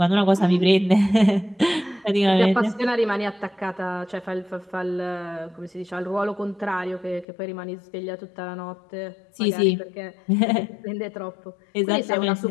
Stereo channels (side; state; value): right; drops out; at 7.2 s